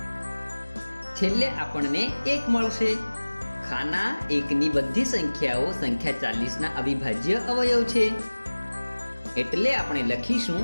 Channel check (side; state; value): both; inverted; correlation -1.00